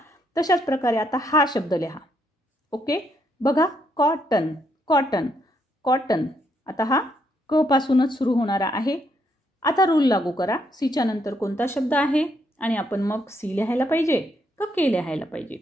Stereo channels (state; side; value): normal; both; correlation 0.75